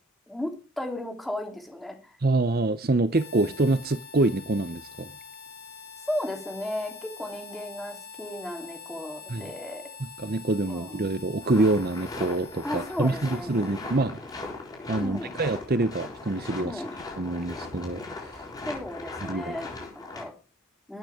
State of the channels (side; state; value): both; normal; correlation 0.56